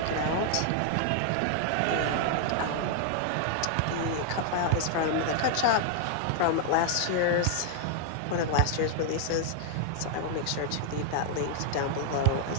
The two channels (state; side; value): different; both; correlation 0.00